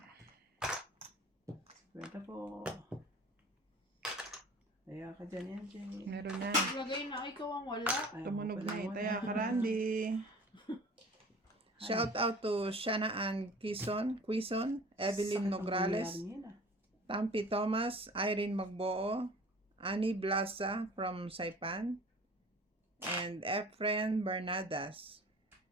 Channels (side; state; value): both; normal; correlation 0.44